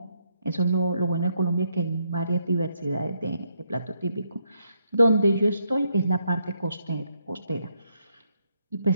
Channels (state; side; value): inverted; both; correlation -0.77